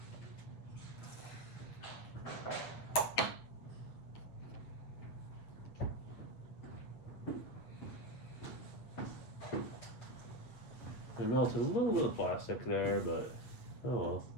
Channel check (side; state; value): right; late; 8.3 ms